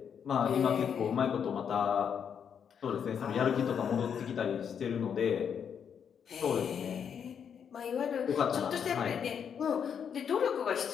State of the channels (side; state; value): right; quieter; 7.6 dB